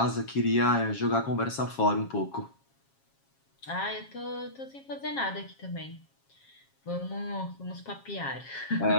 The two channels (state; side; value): late; right; 7.4 ms